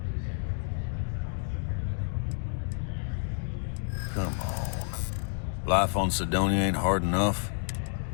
Come on. Life on Sidonia ain't hard enough.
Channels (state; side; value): silent; right; 58 dB below the other